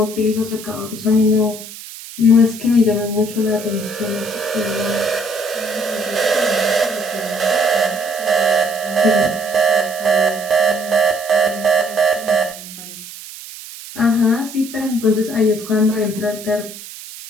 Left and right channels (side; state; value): right; noise; hiss, 14 dB below the sound